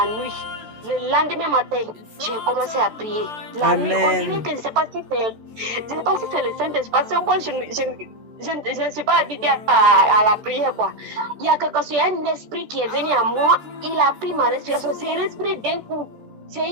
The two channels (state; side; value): late; left; 13 ms